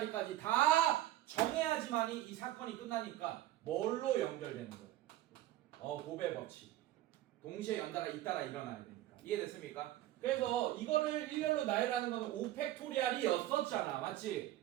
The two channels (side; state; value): left; quieter; 14.6 dB